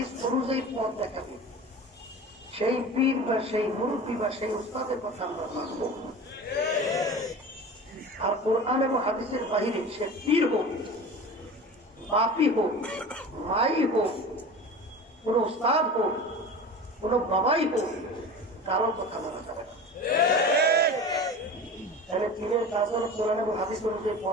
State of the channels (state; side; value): normal; both; correlation 0.34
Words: অনুযায়ী পথ দেখাবে, সেই পীর বা সেই মুরব্বী বা সেই উস্তাদের কথা আমরা মানব। আর কোরআন এবং হাদিসের বাহিরে সে পীর হোক, বাপি হোক, মাই হোক, কোন উস্তাদ হোক, কোন বাবাই হোক, কারো কথা মানা যাবে না। তাহলে পীরের কাজ হল কোরআন এবং হাদিস অনুযায়ী